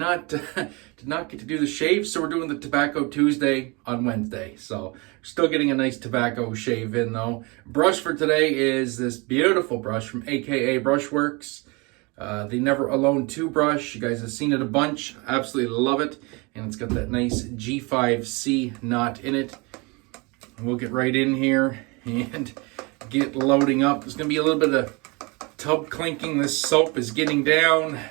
get to do the shave. So we're doing the Tobacco Tuesday on Wednesday. So still getting a nice tobacco shave in though. Brush for today is this beautiful brush from AKA Brushworx. The Never Alone 2 brush. You guys have seen it a bunch. Absolutely love it. And it's got that nice G5C knot in it. And we'll get right in here and get loading up. There's going to be a little bit of tub clinking. This soap is getting down.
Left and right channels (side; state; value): left; quieter; 27.8 dB